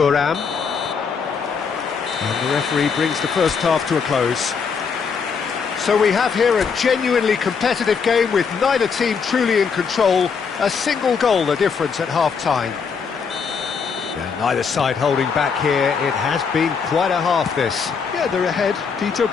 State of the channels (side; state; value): right; quieter; 5.9 dB